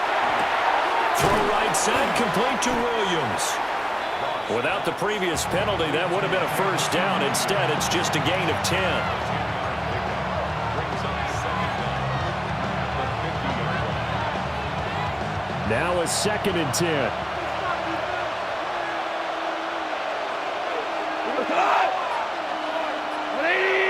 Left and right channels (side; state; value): both; identical; correlation 1.00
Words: Throw right side, complete to Williams. Without the previous penalty, that would have been a first down. Instead, it's just a gain of 10. Now a 2nd and 10.